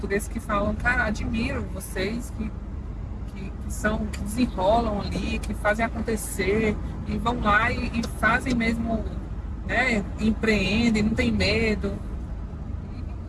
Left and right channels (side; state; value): both; identical; correlation 1.00